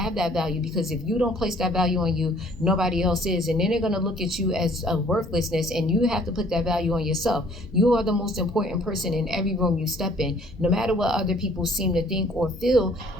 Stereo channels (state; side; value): normal; both; correlation 0.57